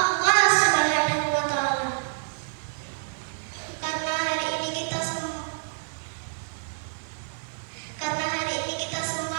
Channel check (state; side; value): silent; left; digital silence